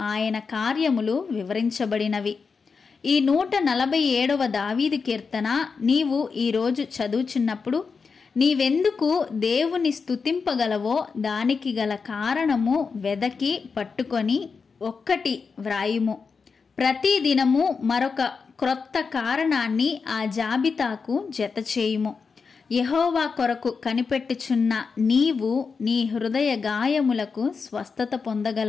ఆయన కార్యములు వివరించబడినవి. ఈ 147వ దావీదు కీర్తన నీవు ఈరోజు చదువుచున్నప్పుడు నీవెందుకు దేవుని స్తుతింపగలవో దానికి గల కారణము వెదకి పట్టుకొని ఒక్కటి వ్రాయుము. ప్రతి దినము మరొక క్రొత్త కారణాన్ని ఆ జాబితాకు జత చేయుము. యెహోవా కొరకు కనిపెట్టుచున్న నీవు నీ హృదయ గాయములకు స్వస్థత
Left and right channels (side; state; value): right; quieter; 5.2 dB